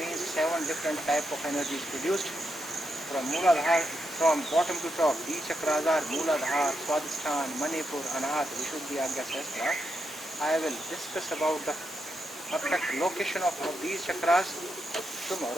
7 different type of energy is produced from Mooladhara, from bottom to top. These chakras are Mooladhara, Swadhisthana, Manipur, Anahata, Vishuddhi, Agya, Sahasrara. I will discuss about the perfect location of these chakras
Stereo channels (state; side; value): normal; both; correlation 0.83